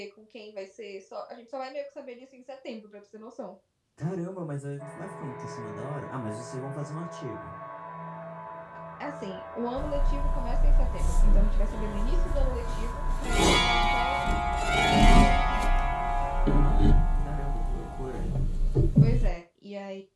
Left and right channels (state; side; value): identical; both; correlation 1.00